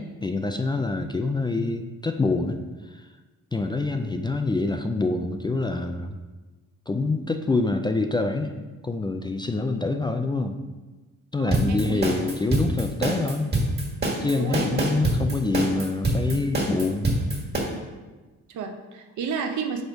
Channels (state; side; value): normal; both; correlation 0.71